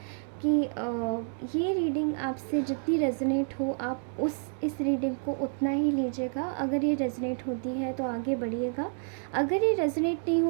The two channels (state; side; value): silent; left; digital silence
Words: कि ये रीडिंग आपसे जितनी रेजोनेट हो आप इस रीडिंग को उतना ही लीजिएगा। अगर ये रेजोनेट होती है तो आगे बढ़िएगा, अगर ये रेजोनेट नहीं